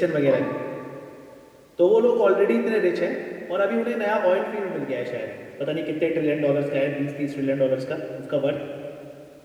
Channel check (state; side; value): identical; both; correlation 1.00